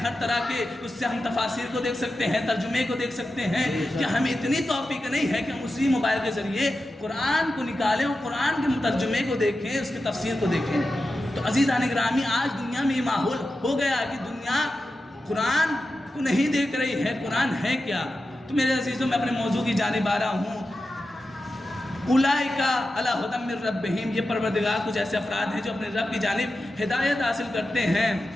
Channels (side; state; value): both; normal; correlation 0.92